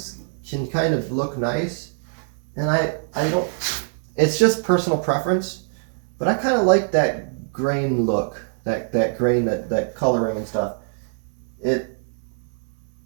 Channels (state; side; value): silent; left; digital silence